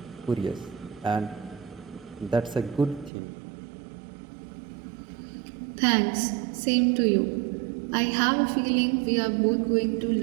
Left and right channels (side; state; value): left; drops out; at 3.1 s